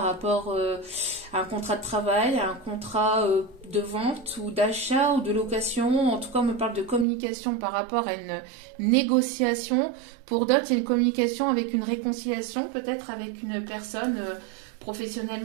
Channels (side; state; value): left; drops out; at 7.1 s